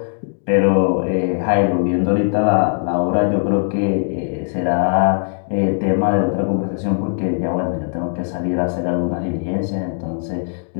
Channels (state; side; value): silent; right; digital silence